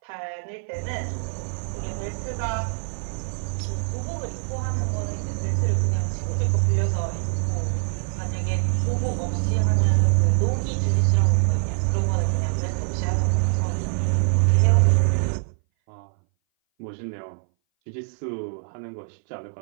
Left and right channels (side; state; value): left; silent; 60 dB below the other